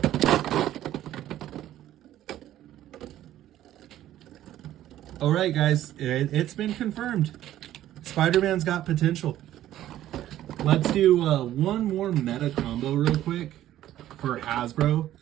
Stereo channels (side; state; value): left; quieter; 13.0 dB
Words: All right, guys, it's been confirmed. Spider-Man's got potential. Let's do one more meta combo real quick for Hasbro.